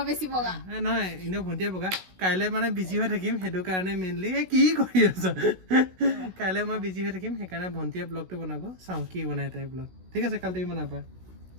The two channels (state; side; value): late; left; 16 ms